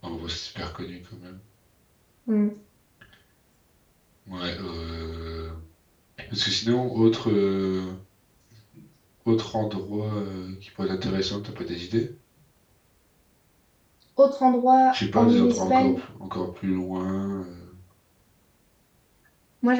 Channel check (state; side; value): identical; both; correlation 1.00